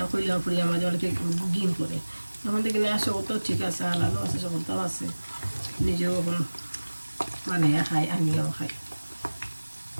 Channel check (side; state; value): both; inverted; correlation -1.00